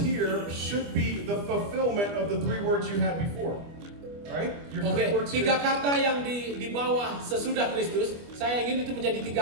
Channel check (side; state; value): left; late; 25 ms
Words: should be the fulfillment of the 3 words you had before. Right? Your 3 words 3 here. kata yang di bawah sesudah Kristus, saya ingin itu menjadi